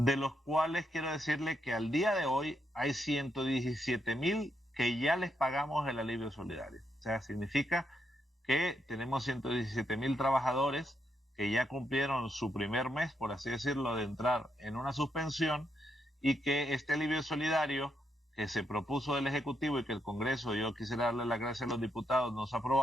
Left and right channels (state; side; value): normal; both; correlation 0.80